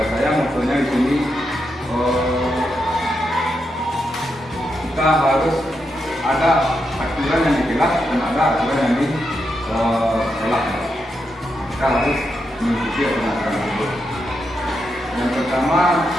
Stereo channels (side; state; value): both; normal; correlation 0.84